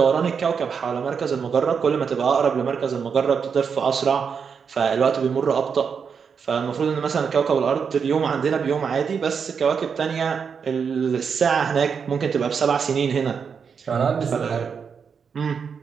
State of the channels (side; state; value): left; quieter; 6.3 dB